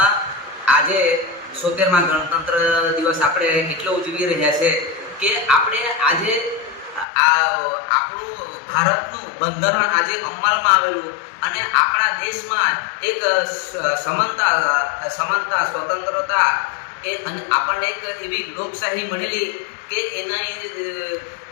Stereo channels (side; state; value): right; drops out; at 7.1 s